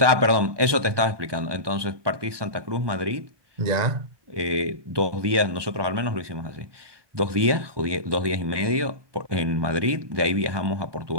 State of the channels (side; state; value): left; late; 1.2 ms